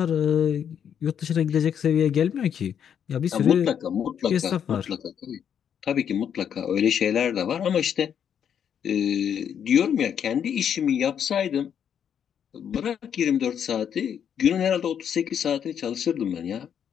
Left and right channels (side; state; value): right; quieter; 8.5 dB